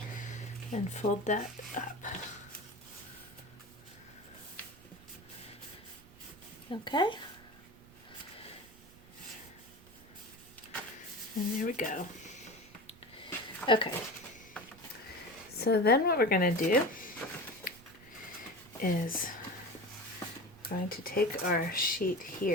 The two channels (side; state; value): right; noise; rumble, 23 dB below the sound